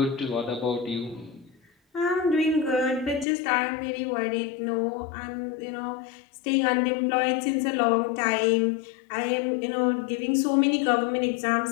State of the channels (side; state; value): right; drops out; at 3.2 s